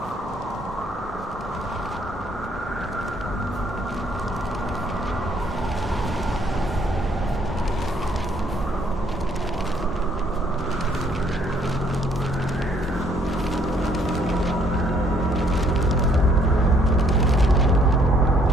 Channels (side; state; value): both; normal; correlation 0.65